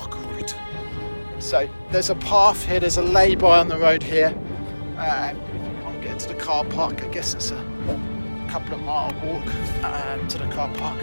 route. So there's a path here, there's a lay-by on the road here. If you can't get to the car park, I guess it's a couple of mile walk to the car park.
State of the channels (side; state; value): both; inverted; correlation -1.00